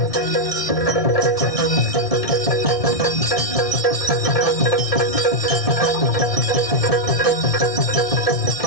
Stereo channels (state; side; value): late; right; 1.7 ms